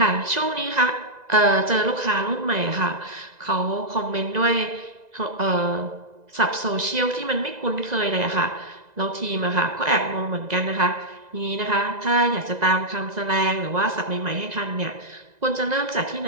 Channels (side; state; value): left; late; 2.0 ms